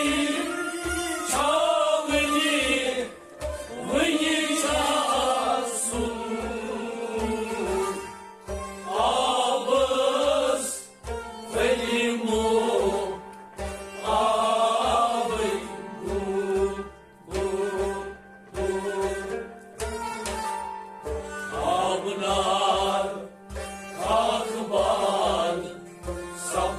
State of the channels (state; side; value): identical; both; correlation 1.00